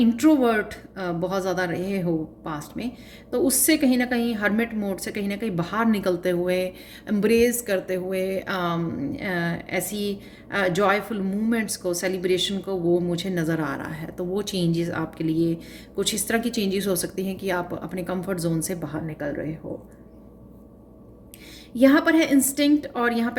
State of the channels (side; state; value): both; identical; correlation 1.00